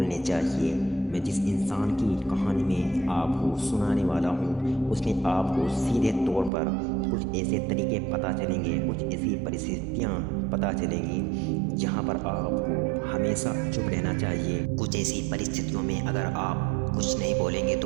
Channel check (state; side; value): drops out; left; at 6.5 s